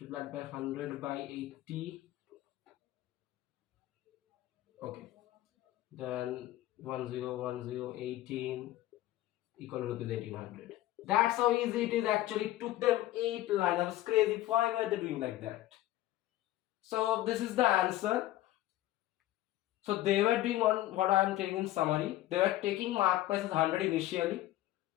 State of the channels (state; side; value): quieter; right; 15.3 dB